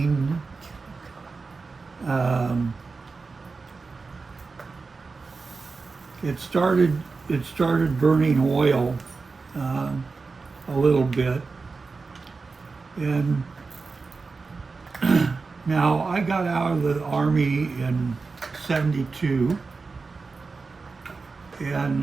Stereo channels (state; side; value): quieter; left; 4.3 dB